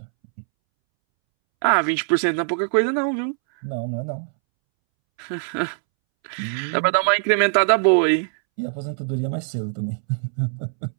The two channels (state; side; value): silent; left; 64 dB below the other